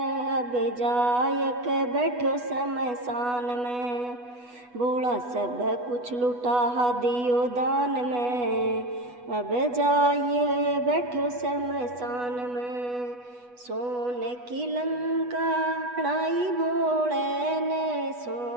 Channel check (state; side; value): late; left; 8.2 ms